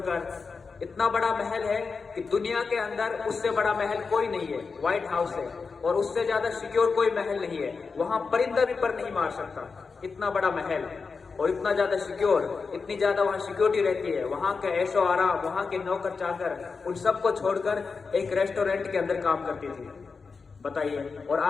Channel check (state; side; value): quieter; right; 4.8 dB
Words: इतना बड़ा महल है कि दुनिया के अंदर उससे बड़ा महल कोई नहीं है व्हाइट हाउस है, और उससे ज्यादा सिक्योर कोई महल नहीं है। वहां परिंदा भी पर नहीं मार सकता, इतना बड़ा महल और इतना ज्यादा सिक्योर, इतनी ज्यादा वहां सिक्योरिटी रहती है। वहां का ऐशो आराम, वहां के नौकर चाकर, उन सबको छोड़कर एक रेस्टोरेंट के अंदर काम करती थी। बताइए, और